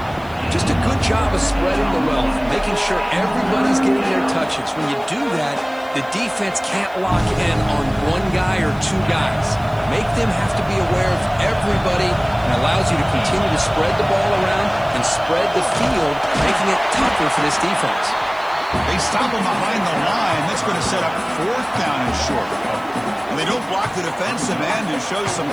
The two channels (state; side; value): noise; right; hiss, 28 dB below the sound